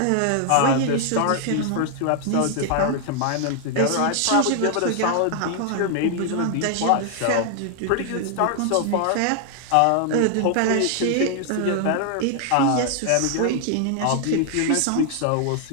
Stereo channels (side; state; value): both; different; correlation 0.00